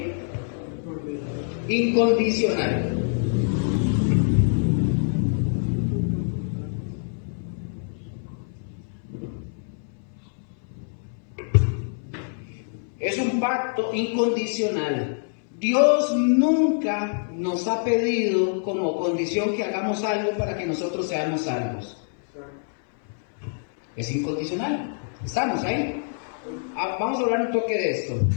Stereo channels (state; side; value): silent; right; 59 dB below the other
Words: incondicional. Es un pacto incondicional. Dios nunca nos ha pedido como condición que hagamos algo para que nosotros seamos salvos. Es incondicional. Estamos ahí. Vamos a hablar un toque de esto.